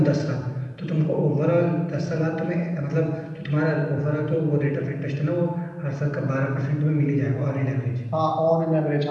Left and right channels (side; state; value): both; identical; correlation 1.00